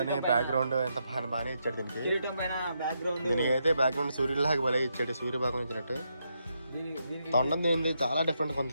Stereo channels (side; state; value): both; inverted; correlation -0.81